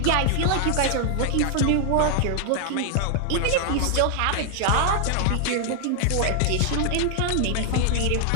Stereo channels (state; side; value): different; both; correlation 0.00